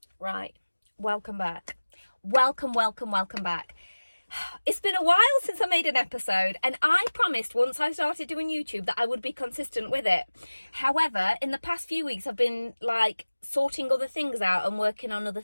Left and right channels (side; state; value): both; inverted; correlation -1.00